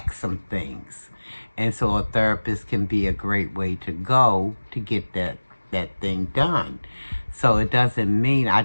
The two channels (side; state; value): both; inverted; correlation -1.00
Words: some things. And so a therapist can be a great way to go to get that thing done. So it doesn't mean, I